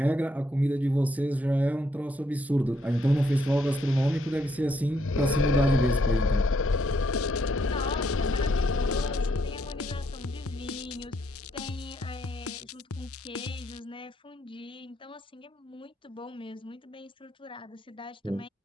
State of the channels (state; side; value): normal; both; correlation 0.74